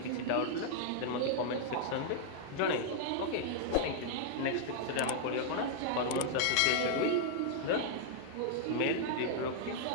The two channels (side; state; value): both; different; correlation -0.01